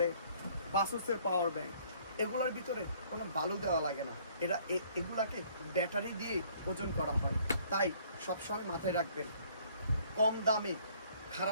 বাসুসের পাওয়ার ব্যাংক, এগুলোর ভিতরে কোনো বালু দেওয়া লাগে না। এগুলাকে ব্যাটারি দিয়ে ওজন করা হয়। তাই সবসময় মাথায় রাখবেন, কম দামে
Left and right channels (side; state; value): both; inverted; correlation -0.59